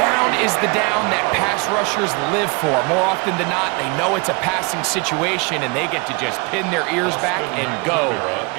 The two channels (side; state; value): left; quieter; 28.9 dB